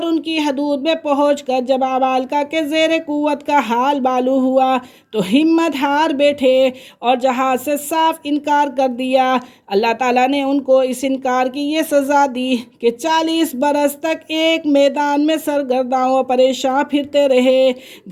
ان کی حدود میں پہنچ کر جب عمالقہ کے زیر قوت کا حال معلوم ہوا تو ہمت ہار بیٹھے اور جہاد سے صاف انکار کر دیا۔ اللہ تعالیٰ نے ان کو اس انکار کی یہ سزا دی کہ 40 برس تک ایک میدان میں سرگرداں و پریشاں پھرتے رہے،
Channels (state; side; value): identical; both; correlation 1.00